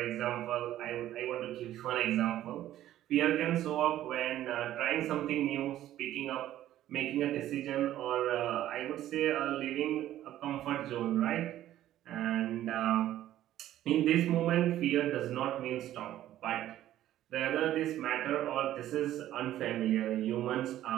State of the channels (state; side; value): quieter; left; 13.1 dB